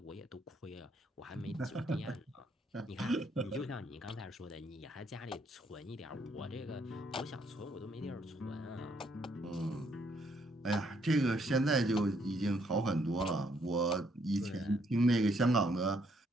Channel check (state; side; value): normal; both; correlation 0.70